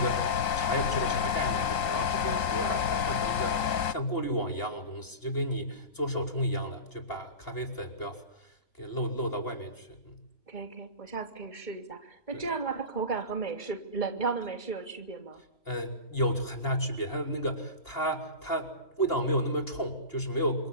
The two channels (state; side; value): late; right; 3.9 ms